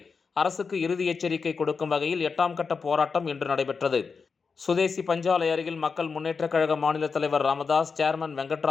அரசுக்கு இறுதி எச்சரிக்கை கொடுக்கும் வகையில் 8ஆம் கட்ட போராட்டம் இன்று நடைபெற்றது. சுதேசி பஞ்சாலை அருகில் மக்கள் முன்னேற்றக் கழக மாநில தலைவர் ராமதாஸ், சேர்மன்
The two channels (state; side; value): quieter; right; 5.1 dB